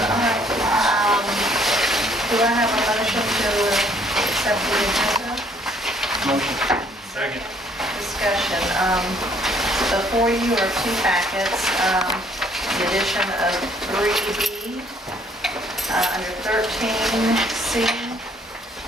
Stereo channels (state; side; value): normal; both; correlation 0.63